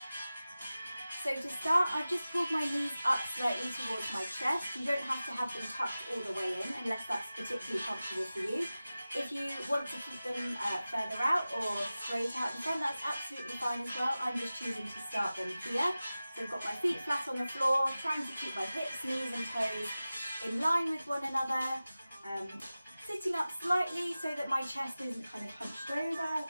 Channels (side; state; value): both; inverted; correlation -0.96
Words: So to start, I've just pulled my knees up slightly towards my chest. You don't have to have them tucked all the way in unless that's particularly comfortable for you. If you want to keep them further out or straight out in front, that's absolutely fine as well. I'm just choosing to start them here. So I've got my feet flat on the floor, trying to keep my hips, knees and toes in line with one another. Sitting up slightly so that my chest isn't kind of hunched over,